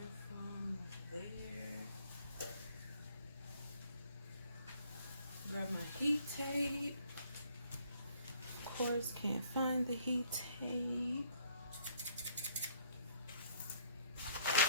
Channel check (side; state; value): both; inverted; correlation -0.62